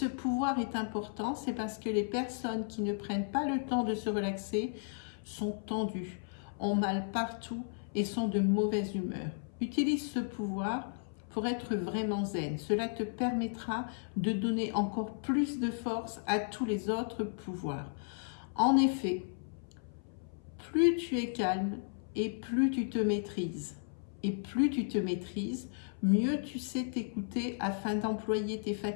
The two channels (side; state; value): right; silent; 55 dB below the other